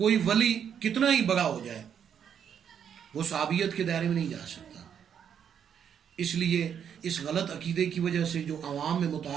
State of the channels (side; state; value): left; quieter; 8.3 dB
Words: ولی کتنا ہی بڑا ہو جائے وہ صحابیت کے دائرے میں نہیں جا سکتا۔ اس لیے اس غلط عقیدے کی وجہ سے جو عوام میں